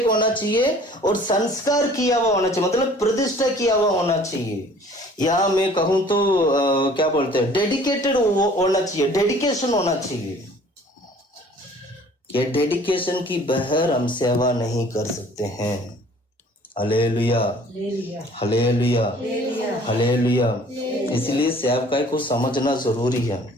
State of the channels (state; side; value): normal; both; correlation 0.52